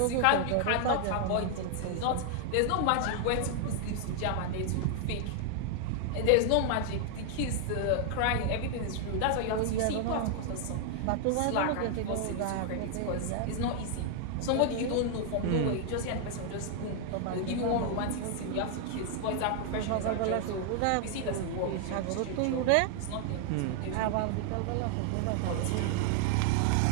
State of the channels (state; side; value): different; both; correlation 0.00